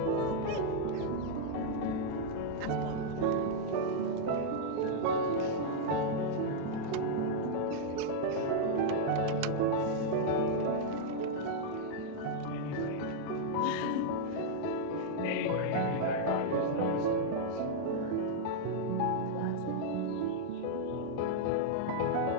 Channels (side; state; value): both; different; correlation -0.02